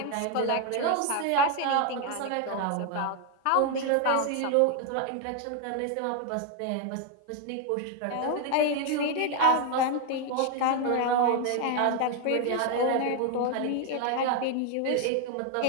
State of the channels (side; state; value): both; different; correlation 0.01